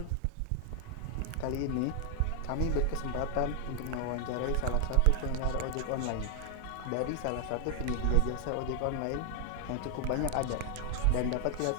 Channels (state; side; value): different; both; correlation 0.00